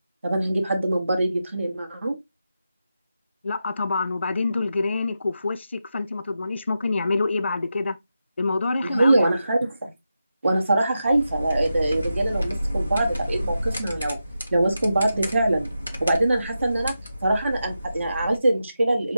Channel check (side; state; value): both; inverted; correlation -0.89